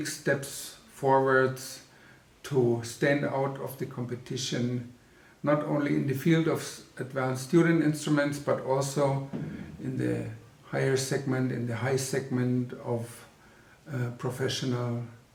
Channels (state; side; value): identical; both; correlation 1.00